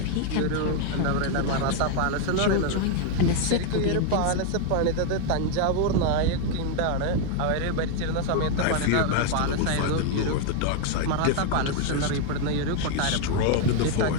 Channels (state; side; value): different; both; correlation 0.01